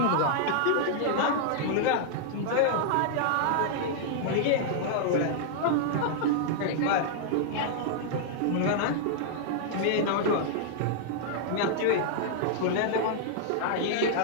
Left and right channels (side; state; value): both; different; correlation -0.01